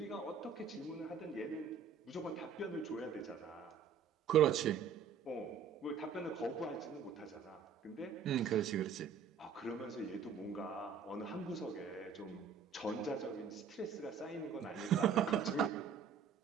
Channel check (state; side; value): quieter; left; 6.6 dB